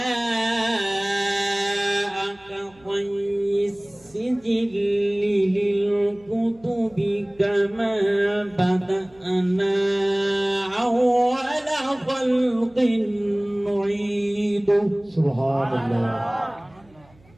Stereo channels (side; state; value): right; noise; hum, 29 dB below the sound